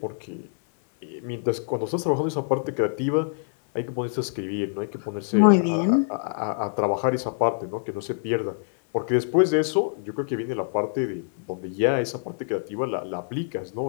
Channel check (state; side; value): silent; right; 57 dB below the other